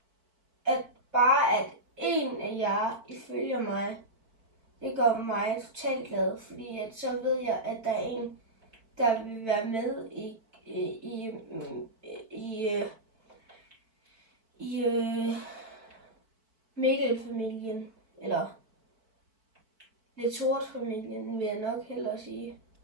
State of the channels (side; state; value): left; late; 4.5 ms